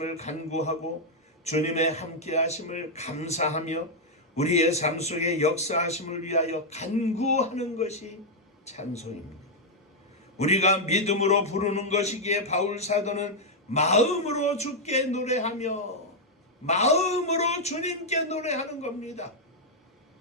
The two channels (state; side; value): normal; both; correlation -0.03